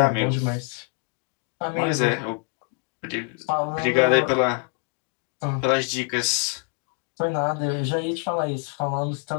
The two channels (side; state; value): right; quieter; 35.2 dB